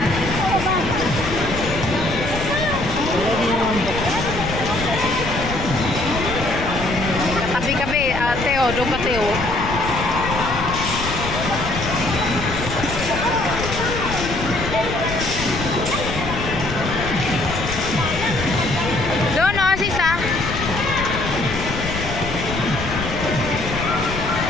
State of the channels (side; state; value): left; noise; rumble, 7 dB below the sound